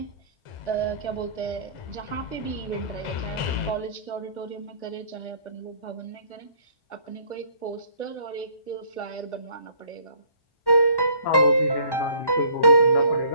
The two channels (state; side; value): late; right; 1.1 ms